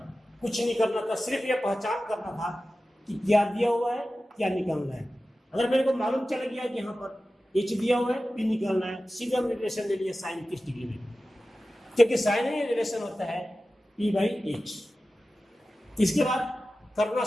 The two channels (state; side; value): normal; both; correlation 0.95